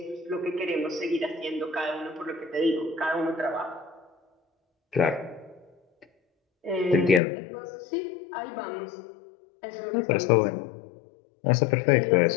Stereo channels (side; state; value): right; drops out; at 7.2 s